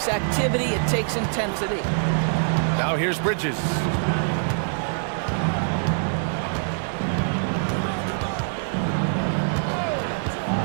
activity, it takes intensity. Now here's Bridges.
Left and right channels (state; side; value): silent; left; digital silence